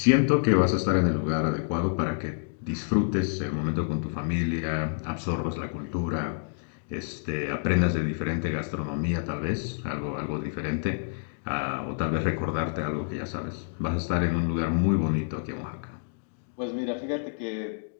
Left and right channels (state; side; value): silent; right; digital silence